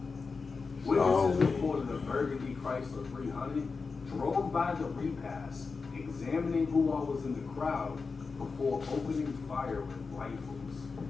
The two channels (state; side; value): quieter; right; 4.6 dB